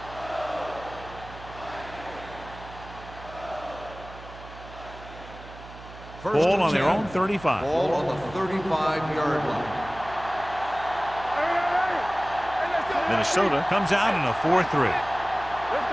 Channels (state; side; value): noise; right; hum, 16 dB below the sound